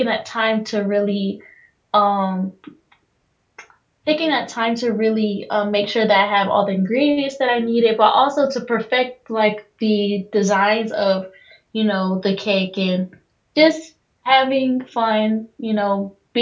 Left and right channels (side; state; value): both; identical; correlation 1.00